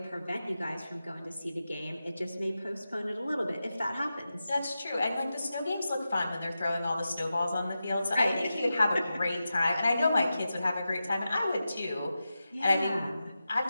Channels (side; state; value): both; inverted; correlation -0.92